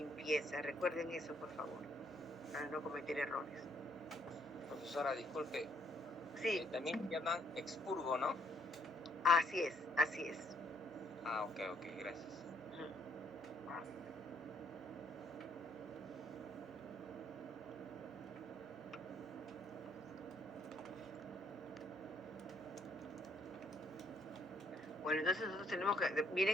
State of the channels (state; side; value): normal; both; correlation 0.68